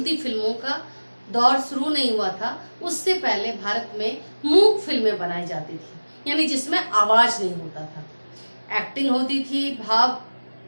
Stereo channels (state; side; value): inverted; both; correlation -1.00